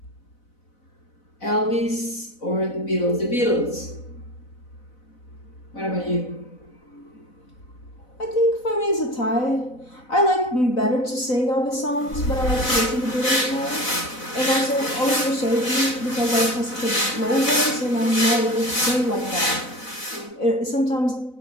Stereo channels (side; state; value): right; late; 4.0 ms